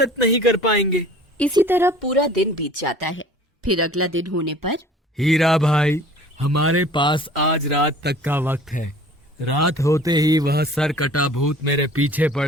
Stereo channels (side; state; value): both; normal; correlation 0.48